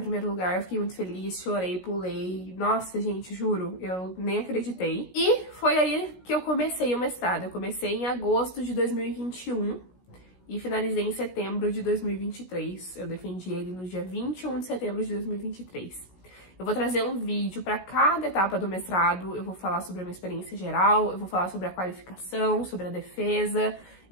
lugar, eu fiquei muito feliz, chorei, pulei. Nossa, gente, juro, eu nem acreditei. E foi aí que eu comecei o mestrado. Eu comecei em agosto de 2021 e finalizei em setembro de 2023. Eu defendi ele no dia 21 de setembro de 2023. Eu vou trazer um vídeo para cada etapa do mestrado, eu vou falar sobre a minha experiência geral, eu vou falar sobre a qualificação, sobre a defesa,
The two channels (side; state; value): right; late; 16 ms